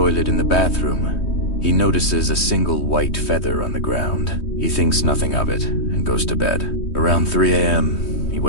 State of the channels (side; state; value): right; late; 3.2 ms